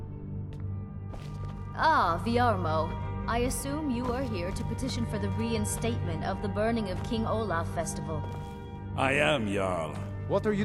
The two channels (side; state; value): both; identical; correlation 1.00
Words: Ah, Viarmo. I assume you are here to petition for the reinstatement of the burning of King Olaf Festival. I am, Jarl. What are you